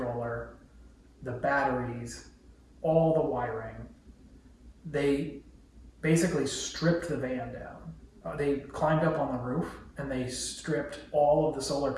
the batteries, all the wiring. They basically stripped the van down. They climbed up on the roof and they stripped all of the solar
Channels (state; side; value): identical; both; correlation 1.00